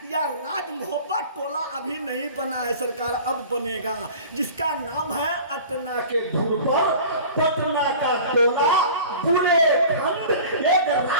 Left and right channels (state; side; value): inverted; both; correlation -0.41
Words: या राज मोहब्बत टोला अभी नहीं बना है सरकार, अब बनेगा, जिसका नाम है अटना के धुन पर पटना का टोला बुलेखंड, एक